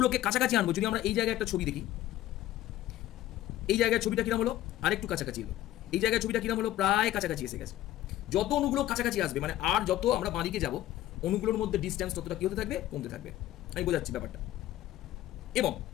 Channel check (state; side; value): quieter; right; 13.9 dB